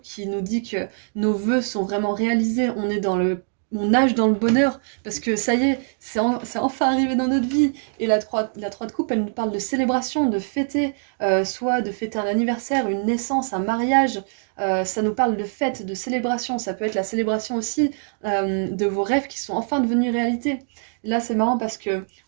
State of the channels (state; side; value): silent; left; 63 dB below the other